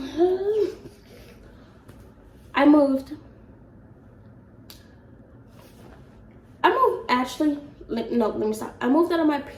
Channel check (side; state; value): both; identical; correlation 1.00